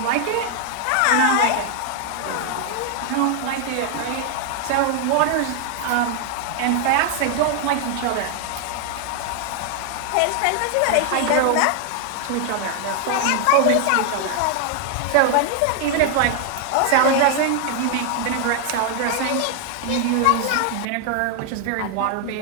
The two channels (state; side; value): different; both; correlation 0.00